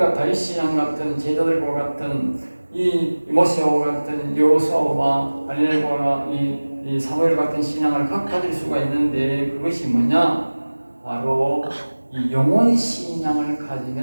다윗 신앙 같은 제자들과 같은 이 모세와 같은 여호수아와 다니엘과 이 사무엘 같은 신앙을 가질 수가 있는데 그것이 뭐냐? 바로 이 영혼 신앙을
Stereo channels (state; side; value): inverted; both; correlation -1.00